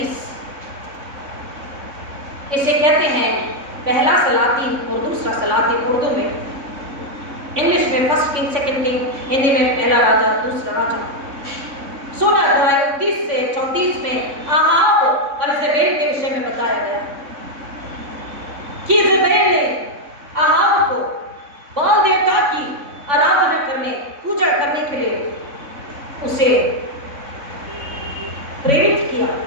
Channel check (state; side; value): late; left; 3.5 ms